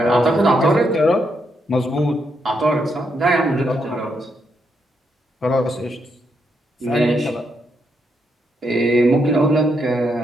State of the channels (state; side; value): normal; both; correlation 0.79